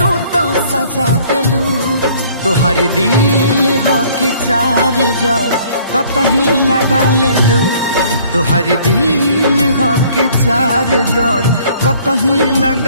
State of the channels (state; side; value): inverted; both; correlation -0.58